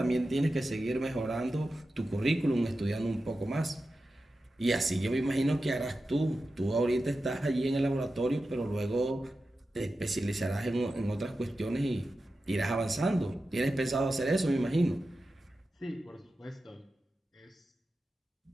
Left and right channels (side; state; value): both; normal; correlation 0.92